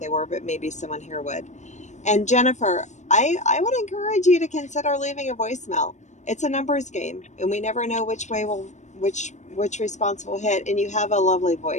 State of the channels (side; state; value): right; late; 0.34 ms